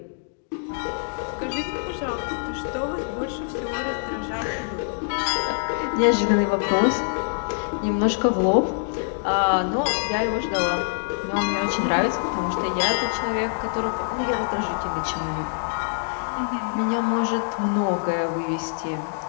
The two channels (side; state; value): right; silent; digital silence